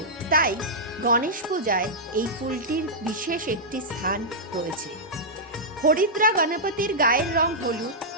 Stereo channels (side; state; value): both; normal; correlation -0.10